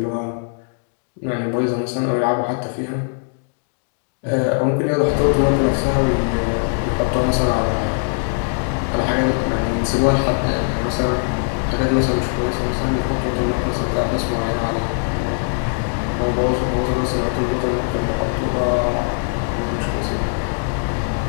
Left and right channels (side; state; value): right; silent; 65 dB below the other